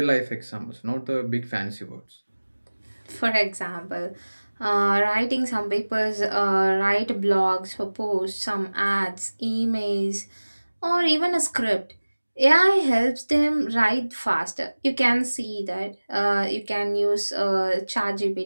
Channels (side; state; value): both; inverted; correlation -1.00